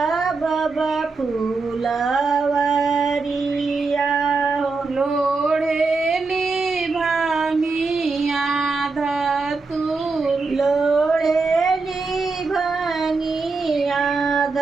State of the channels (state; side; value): quieter; left; 4.1 dB